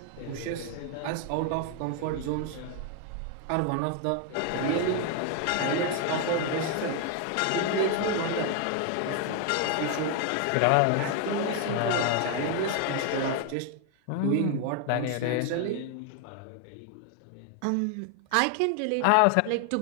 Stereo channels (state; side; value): different; both; correlation 0.00